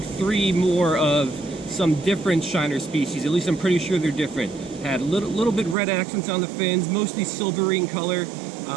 3 more of some different shiner species. At least I'm pretty sure they're different. Had little bit red accents on the fins, mostly silvery in color.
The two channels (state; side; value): drops out; left; at 5.8 s